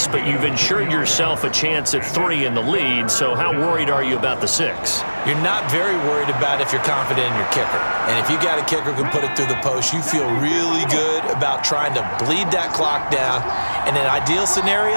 but you've ensured yourself a chance at 3 in the lead, so how worried are you about the 6? You're not very worried about if you're confident in your kicker. And if you got a kicker who can put it through the post, you feel really good about trying to bleed that clock down. In an ideal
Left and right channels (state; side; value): inverted; both; correlation -1.00